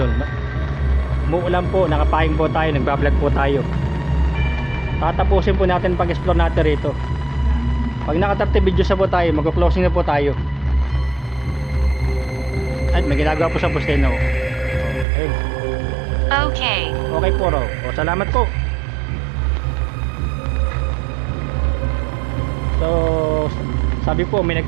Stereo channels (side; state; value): left; drops out; at 15.1 s